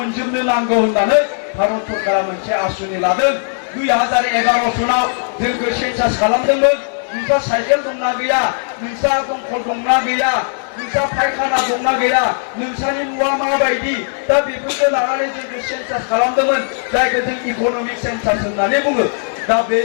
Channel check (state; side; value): silent; right; digital silence